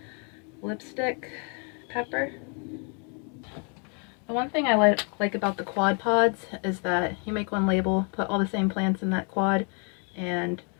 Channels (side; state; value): right; quieter; 38.4 dB